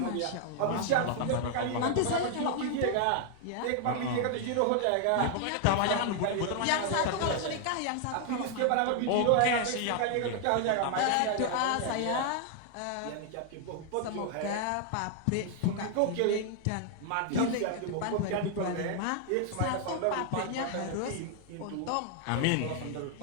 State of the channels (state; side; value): different; both; correlation 0.00